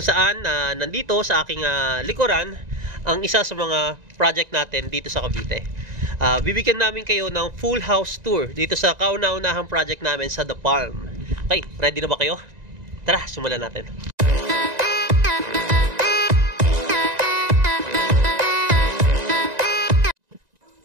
saan nandito sa aking likuran ang isa sa mga project natin dito sa Cavite. Bibigyan namin kayo ng full house tour dito sa kauna-unahang project namin sa The Palm. Okay, ready na ba kayo? Tara, simulan natin.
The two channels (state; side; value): late; left; 1.9 ms